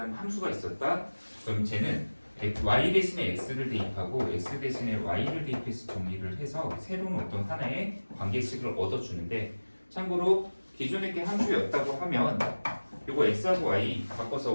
함수가 있었다. 그럼 쟤는 y 대신에 x를 대입하고 x 대신에 y를 대입해서 정리를 해서 새로운 어떤 하나의 관계식을 얻어주는데, 참고로 기존에 게 함수였다고 하면 이거 x하고 y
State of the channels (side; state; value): both; inverted; correlation -1.00